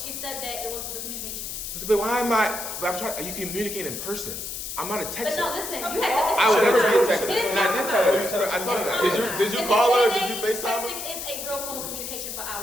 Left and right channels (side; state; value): left; noise; hiss, 6 dB below the sound